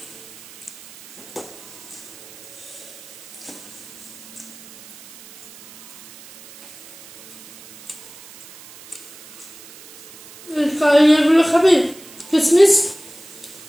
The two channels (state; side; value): noise; right; hiss, 20 dB below the sound